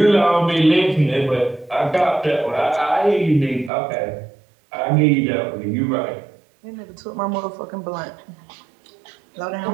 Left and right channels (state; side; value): drops out; left; at 3.7 s